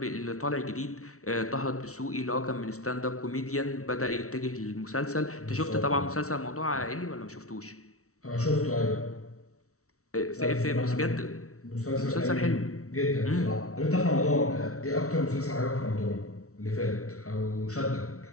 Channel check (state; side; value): late; right; 0.64 ms